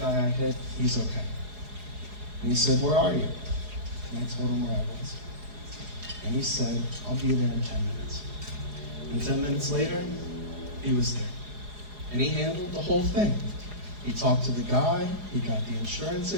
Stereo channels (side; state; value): left; late; 4.8 ms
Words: I hit, he's okay." And he said, "Where are you?" And I told him where I was. And he said, "I'll be there in 10 minutes." And 10 minutes later, he was there. And he handled the whole thing. He talked to the guy, he got the insurance